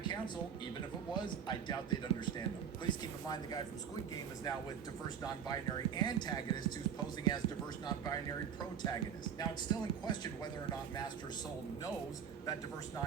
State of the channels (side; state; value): left; quieter; 8.0 dB